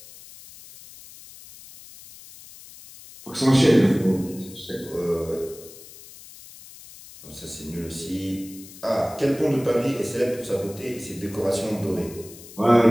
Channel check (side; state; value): left; noise; hiss, 18 dB below the sound